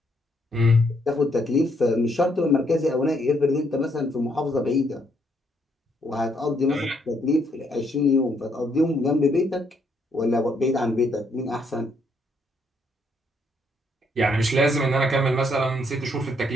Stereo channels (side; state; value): both; normal; correlation 0.72